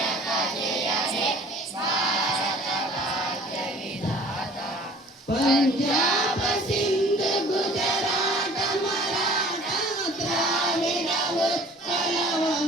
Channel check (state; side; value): normal; both; correlation 0.49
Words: Punjab Sindh Gujarat Maratha Dravid Utkal